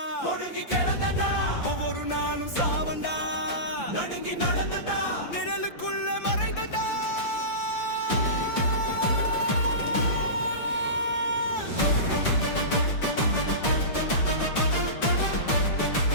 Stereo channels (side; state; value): right; late; 5.9 ms